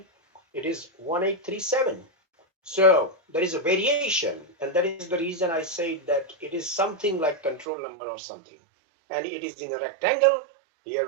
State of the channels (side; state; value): left; drops out; at 7.7 s